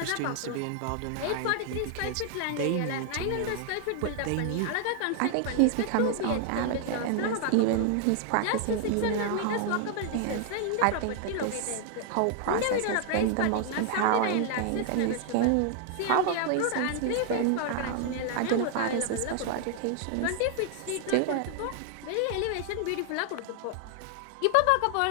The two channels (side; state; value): both; different; correlation 0.00